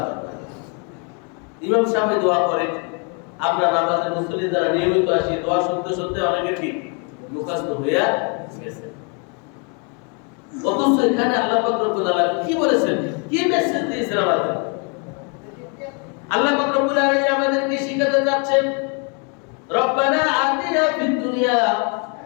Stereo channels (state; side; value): quieter; right; 36.7 dB